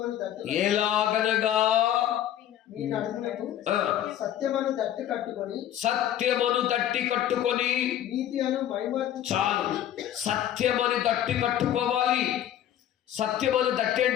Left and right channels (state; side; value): quieter; right; 11.4 dB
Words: ఎలాగనగా సత్యమను తట్టి కట్టుకొని చాలు. సత్యమని తట్టి కట్టుకోవాలి. సత్యమని తట్టి